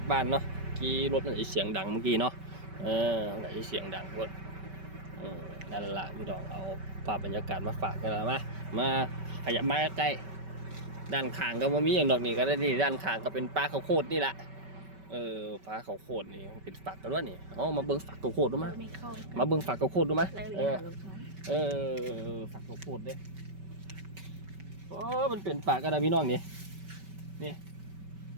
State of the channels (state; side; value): late; left; 5.2 ms